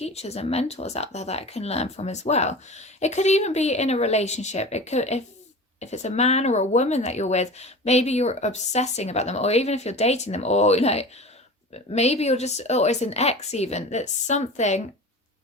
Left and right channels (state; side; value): normal; both; correlation 0.35